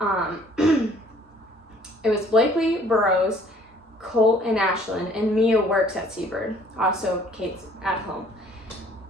Burrows, Colt, and Ashlyn, and Mia works at Seabird. Also, Kate's at home.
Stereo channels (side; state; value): both; normal; correlation 0.57